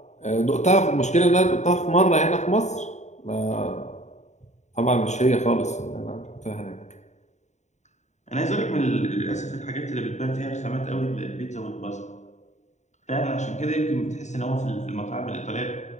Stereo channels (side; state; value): right; late; 0.34 ms